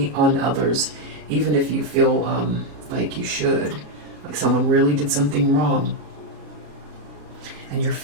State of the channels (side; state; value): left; late; 33 ms